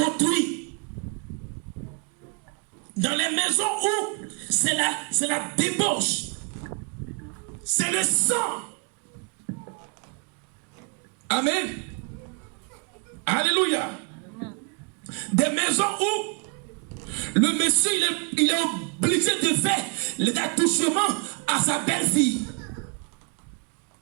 Dans les maisons où c'est la débauche. C'est le sang. Amen. Alléluia. Des maisons où le monsieur il est obligé de faire les attouchements à sa belle-fille.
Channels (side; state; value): left; quieter; 37.4 dB